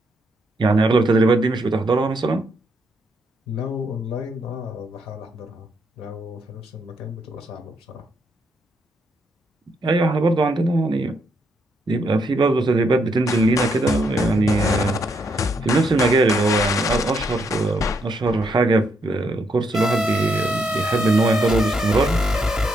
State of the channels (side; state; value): both; normal; correlation 0.76